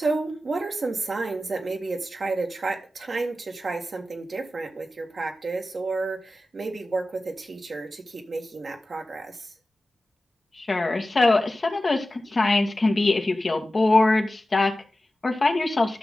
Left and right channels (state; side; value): normal; both; correlation 0.94